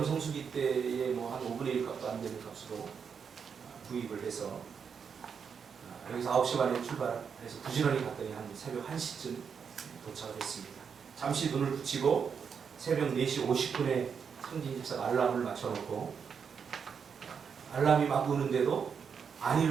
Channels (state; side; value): quieter; left; 6.6 dB